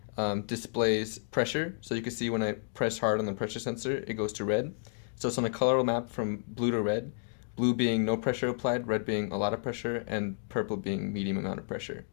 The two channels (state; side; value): silent; right; digital silence